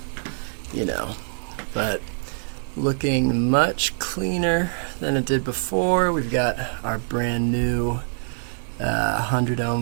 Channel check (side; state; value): left; silent; digital silence